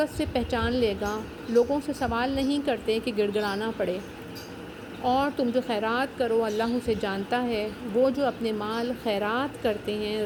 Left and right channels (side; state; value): both; identical; correlation 1.00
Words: سے پہچان لے گا۔ لوگوں سے سوال نہیں کرتے کہ گڑ گڑانا پڑے۔ اور تم جو خیرات کرو اللہ اسے جانتا ہے۔ وہ جو اپنے مال خیرات کرتے ہیں